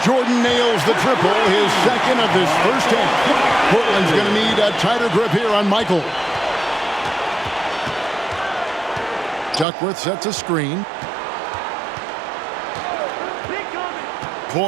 Jordan nails the triple, his second of this first half. Portland's going to need a tighter grip here on Michael. Duckworth sets a screen.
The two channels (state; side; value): drops out; left; at 9.7 s